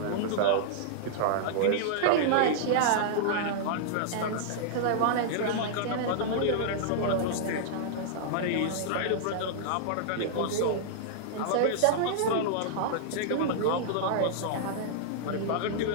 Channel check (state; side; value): different; both; correlation -0.01